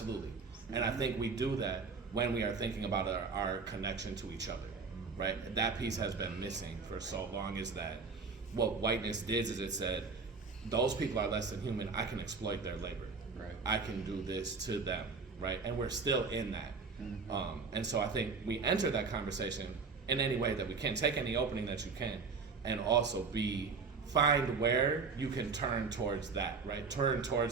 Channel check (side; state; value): left; quieter; 4.8 dB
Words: And I think we do that when we are thinking about our connection to each other, right? That piece has been missing for so long, is that what whiteness did is it said, those people are less than human, I can exploit their labor. Right. I can do this to them, right? And we're still in that. And so I think we enter that conversation in any way that we can, take any opening that you can, and also find where you can turn towards that, right? Turn